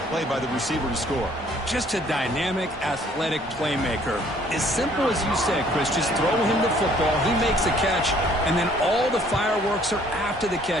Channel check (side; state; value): both; normal; correlation 0.60